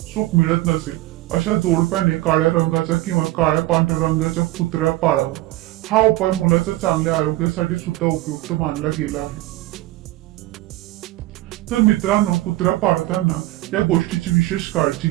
सुख मिळत नसेल अशा जोडप्याने काळ्या रंगाचा किंवा काळ्या पांढऱ्या रंगाचा कुत्रा पाळावा. हा उपाय मुलाच्या चांगल्या आरोग्यासाठी सुद्धा उपयुक्त मानला गेला आहे. तर मित्रांनो, कुत्रा पाळताना या गोष्टीची विशेष काळजी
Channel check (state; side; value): quieter; left; 17.3 dB